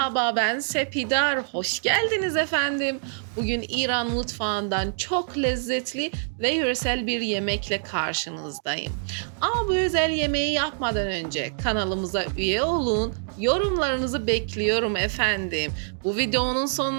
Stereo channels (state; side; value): silent; left; digital silence